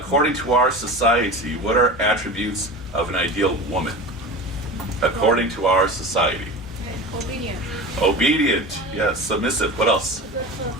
to our society, what are attributes of an ideal woman? According to our society. Obedient. Obedient, yes. Submissive. What else?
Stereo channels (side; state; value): both; normal; correlation 0.31